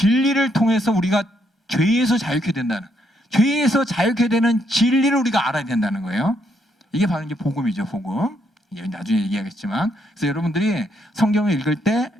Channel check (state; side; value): normal; both; correlation 0.74